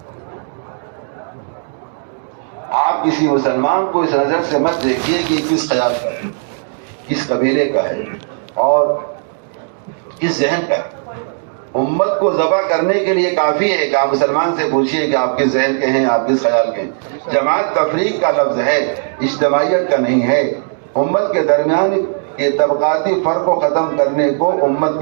آپ کسی مسلمان کو اس نظر سے مت دیکھیے کہ کس خیال کا ہے، کس قبیلے کا ہے اور کس ذہن کا ہے۔ امت کو ذبح کرنے کے لیے کافی ہے کہ آپ مسلمان سے پوچھیے کہ آپ کس ذہن کے ہیں، آپ کس خیال کے ہیں۔ جماعت تفریق کا لفظ ہے، اجتماعیت کا نہیں ہے۔ امت کے درمیان یہ طبقاتی فرق کو ختم کرنے کو امت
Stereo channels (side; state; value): left; silent; 69 dB below the other